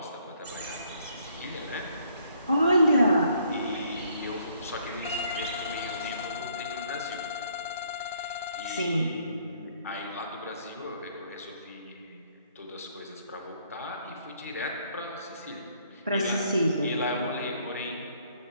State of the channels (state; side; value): inverted; both; correlation -0.65